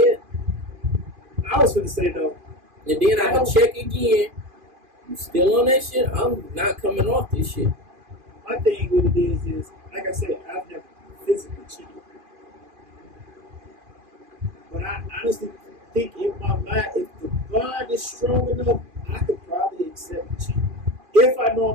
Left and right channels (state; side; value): late; left; 2.5 ms